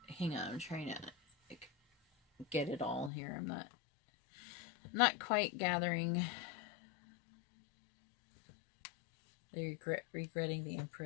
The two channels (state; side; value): drops out; right; at 3.1 s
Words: Hang on, I'm trying to like, get it all here. I'm not quite gathering. They're regretting the